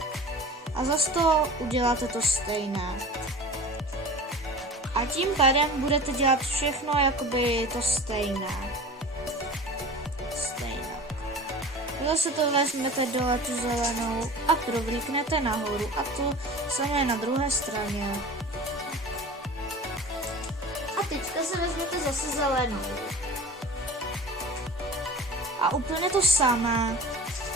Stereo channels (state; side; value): normal; both; correlation 0.37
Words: A zase to uděláte to stejné. A tím pádem budete dělat všechno jakoby to stejné. Zase to vezmete dole tu zelenou a provlíknete nahoru a to samé na druhé straně. A teďka se vezmete zase zelenou. A úplně to samé.